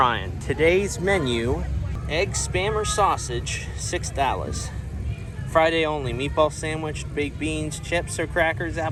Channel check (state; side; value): identical; both; correlation 1.00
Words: Today's menu, egg spam or sausage, $6. Friday only, meatball sandwich, baked beans, chips or crackers,